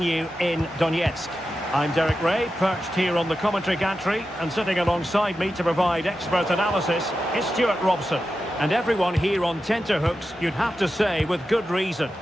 in Donetsk. I'm Derek Ray, perched here on the commentary gantry, and sitting alongside me to provide expert analysis is Stuart Robson. And everyone here on tenterhooks, you'd have to say with good reason.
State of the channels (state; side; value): normal; both; correlation 0.91